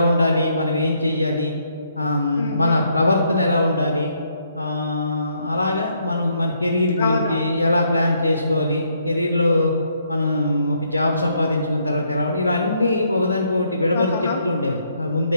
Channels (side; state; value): both; inverted; correlation -0.73